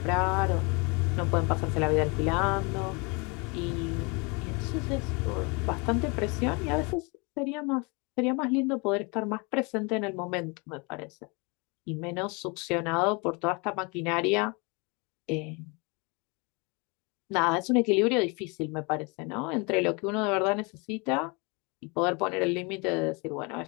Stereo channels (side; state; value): right; quieter; 30.1 dB